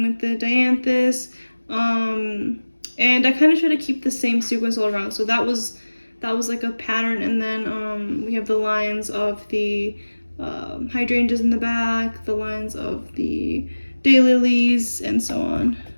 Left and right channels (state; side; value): inverted; both; correlation -1.00